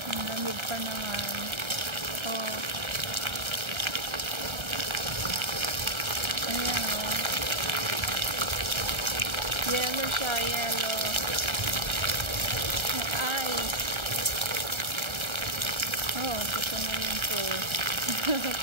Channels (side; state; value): left; late; 1.3 ms